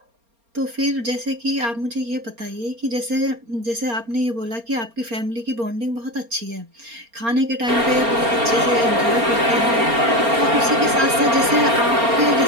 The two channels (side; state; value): left; late; 4.3 ms